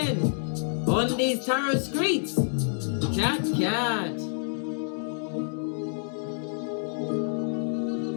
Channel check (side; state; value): right; silent; digital silence